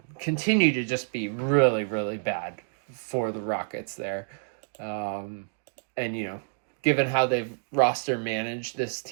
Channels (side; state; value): left; silent; digital silence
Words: continue to just be really, really bad for the Rockets there. And, given how they've roster managed this